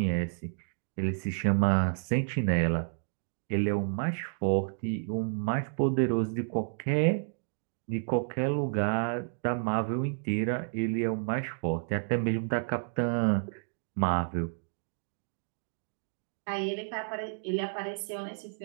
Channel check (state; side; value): silent; left; digital silence